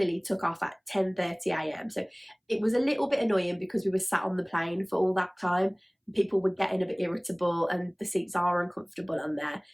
took off at 10:30 a.m. So it was a little bit annoying because we were sat on the plane for all that time. People were getting a bit irritable and the seats are uncomfortable on there,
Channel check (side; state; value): both; identical; correlation 1.00